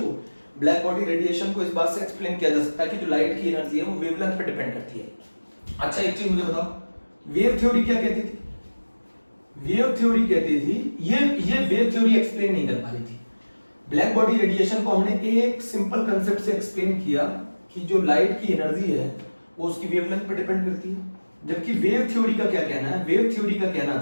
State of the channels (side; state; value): both; inverted; correlation -1.00